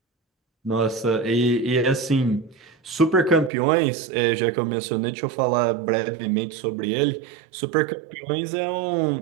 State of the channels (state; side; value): drops out; left; at 3.5 s